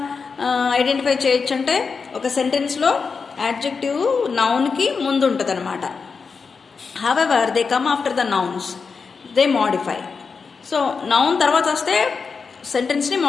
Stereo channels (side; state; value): right; quieter; 5.2 dB